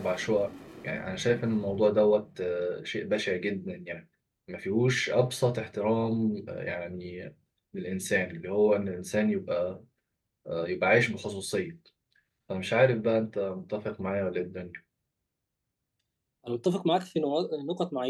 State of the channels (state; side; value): identical; both; correlation 1.00